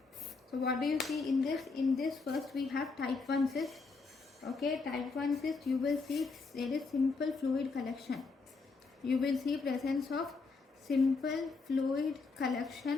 So what do you see in this? In this, first we have type 1 cyst. Okay, type 1 cyst, you will see there is simple fluid collection. You will see presence of simple fluid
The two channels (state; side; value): quieter; right; 4.3 dB